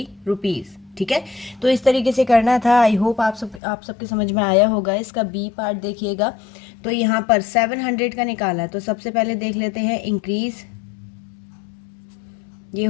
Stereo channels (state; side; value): drops out; right; at 3.6 s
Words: रुपीज़। ठीक है, तो इस तरीके से करना था। आई होप आप सबके समझ में आया होगा। इसका बी पार्ट देखिएगा, तो यहाँ पर 700 का निकाला है। तो सबसे पहले देख लेते हैं इंक्रीज, ये